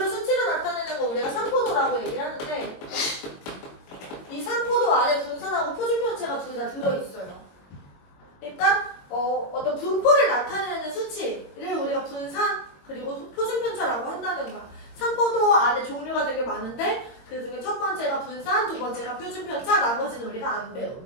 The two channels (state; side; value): late; right; 22 ms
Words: 수치로 나타내는 거 우리가 산포도라고 얘기를 하는데 이 산포도 안에 분산하고 표준 편차가 둘 다 들어있어요. 그러니까 어떤 분포를 나타내는 수치를 우리가 분산 그리고 표준 편차라고 한다는 거야.